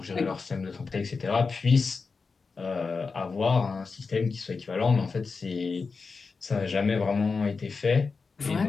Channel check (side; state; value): right; quieter; 4.6 dB